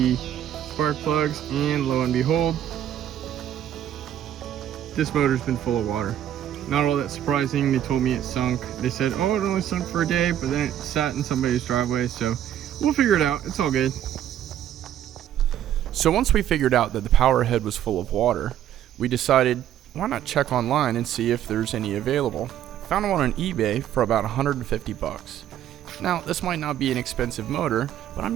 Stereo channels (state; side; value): quieter; left; 11.1 dB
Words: spark plugs, and lo and behold, this motor's been full of water. Not all that surprising. They told me it sunk. They said, oh, it only sunk for a day, but then it sat in somebody's driveway, so we'll figure it out. It's all good. So once we figured out that the powerhead was full of water, we decided, why not check online and see if there's any available. Found one on eBay for about 150 bucks. Now, this might not be an expensive motor, but